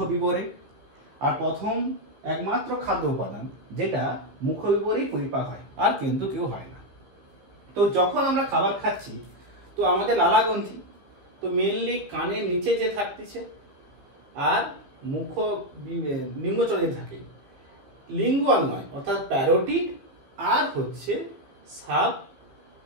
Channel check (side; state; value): left; late; 15 ms